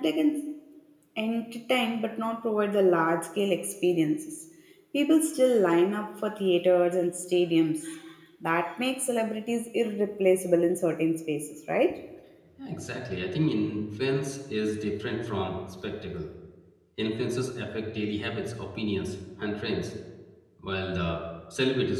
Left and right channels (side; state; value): both; identical; correlation 1.00